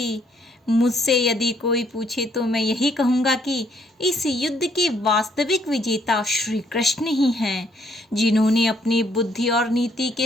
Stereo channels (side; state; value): both; normal; correlation 0.68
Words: मुझसे यदि कोई पूछे तो मैं यही कहूँगा कि इस युद्ध के वास्तविक विजेता श्री कृष्ण ही हैं, जिन्होंने अपनी बुद्धि और नीति